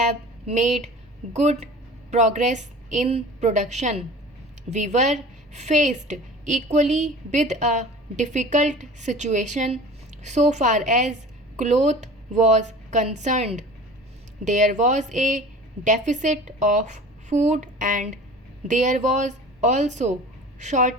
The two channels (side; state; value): both; normal; correlation 0.40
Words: made good progress in production. We were faced equally with a difficult situation so far as cloth was concerned. There was a deficit of food and there was also